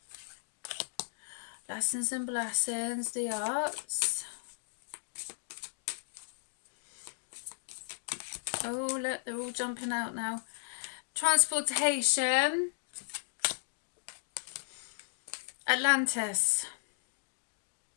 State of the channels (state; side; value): silent; right; digital silence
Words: lessons and blessings, the arts. Oh, look, they're all jumping out now. Transportation. Atlantis.